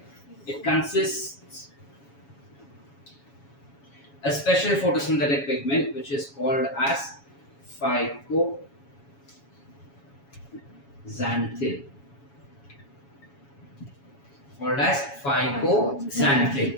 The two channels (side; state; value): right; late; 7.2 ms